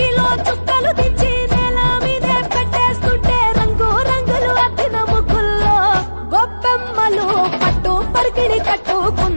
చుక్కలు దించి నేల మీదే పెట్టేస్తుంటే రంగు రంగులు అద్దిన ముగ్గుల్లో గొప్పెమ్మలు పట్టు పరికిణి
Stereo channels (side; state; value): both; inverted; correlation -1.00